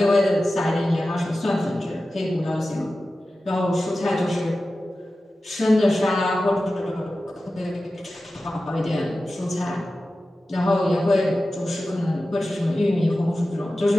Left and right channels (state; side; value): normal; both; correlation 0.94